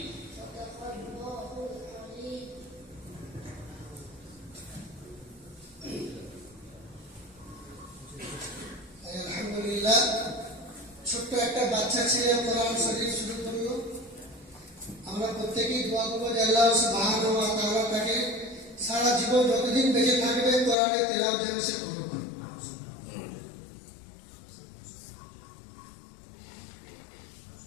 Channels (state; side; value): drops out; right; at 20.8 s